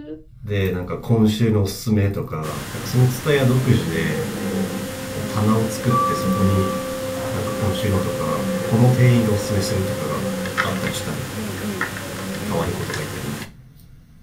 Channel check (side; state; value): both; identical; correlation 1.00